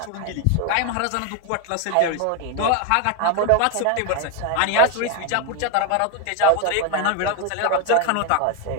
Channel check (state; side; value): different; both; correlation 0.01